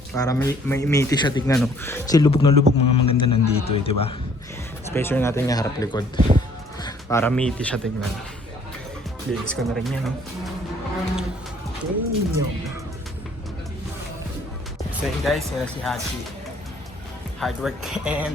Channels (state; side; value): normal; both; correlation 0.60